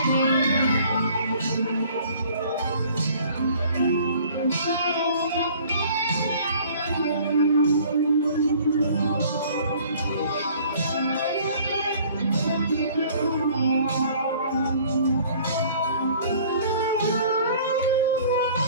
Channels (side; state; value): both; inverted; correlation -0.53